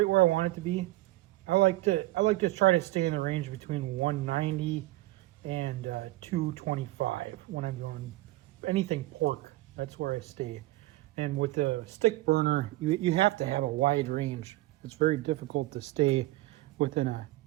where I want it to be. I like to try to stay in the range between 190 and 225 when I'm doing anything pork. That's where I stay. And with the stick burner, you have to have a wide range. It's very difficult to stay within a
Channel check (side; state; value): left; quieter; 18.1 dB